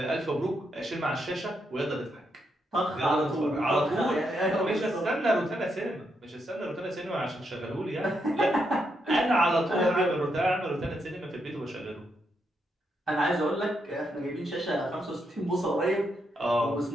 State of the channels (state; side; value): normal; both; correlation 0.81